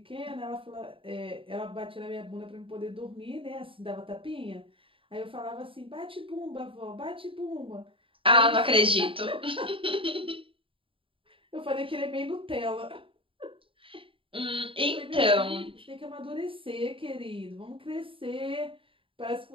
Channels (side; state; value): left; late; 0.26 ms